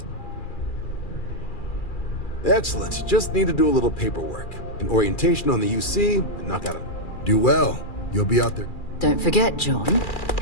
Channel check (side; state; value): right; late; 2.4 ms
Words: Excellent. Just need to do a little paperwork. An orientation on the UC, and knock out a... Do well. You'll be out there. Don't forget, John.